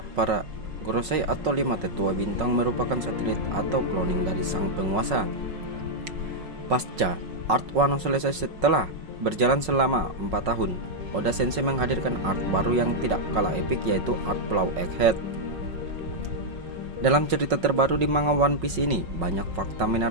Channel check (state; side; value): late; left; 5.4 ms